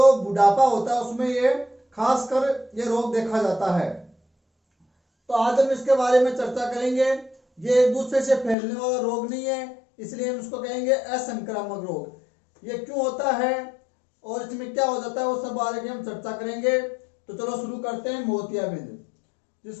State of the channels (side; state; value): right; drops out; at 8.6 s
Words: बुढ़ापा होता है उसमें ये खासकर ये रोग देखा जाता है। तो आज हम इसके बारे में चर्चा करेंगे। ये एक दूसरे से फैलने वाला रोग नहीं है, इसलिए हम इसको कहेंगे असंक्रामक रोग। ये क्यों होता है और इसमें क्या हो जाता है वो सब बारे में हम चर्चा करेंगे। तो चलो शुरू करते हैं। मोतियाबिंद,